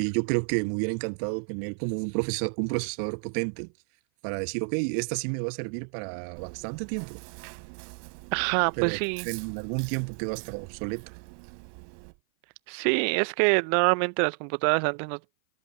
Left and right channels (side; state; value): left; silent; 55 dB below the other